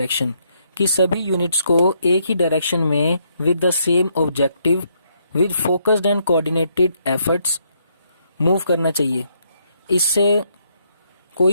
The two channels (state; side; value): inverted; both; correlation -0.73